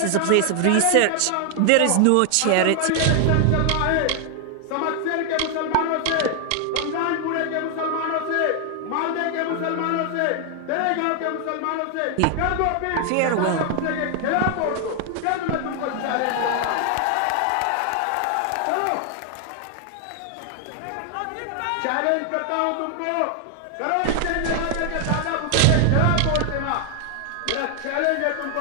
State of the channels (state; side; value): different; both; correlation 0.00